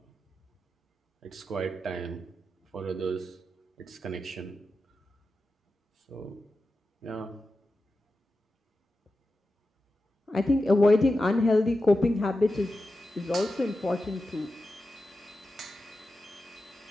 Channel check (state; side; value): normal; both; correlation 0.91